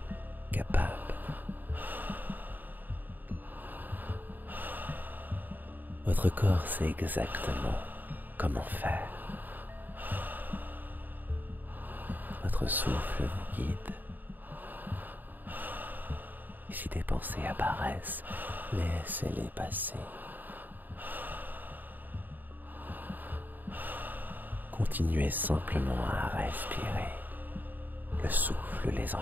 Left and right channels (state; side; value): late; left; 0.088 ms